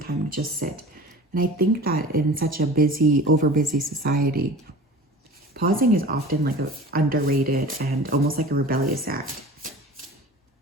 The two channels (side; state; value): both; normal; correlation 0.39